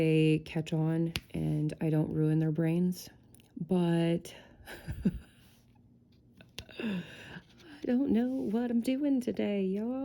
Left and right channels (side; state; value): both; identical; correlation 1.00